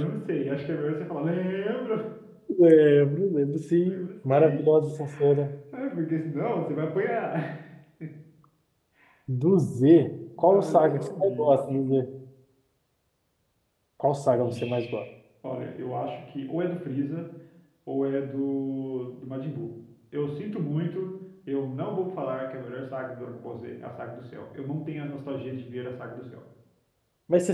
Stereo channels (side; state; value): both; identical; correlation 1.00